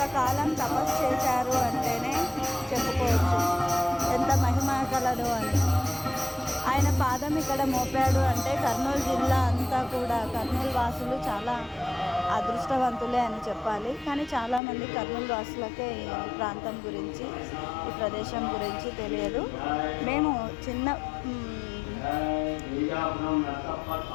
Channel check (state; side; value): drops out; right; at 14.6 s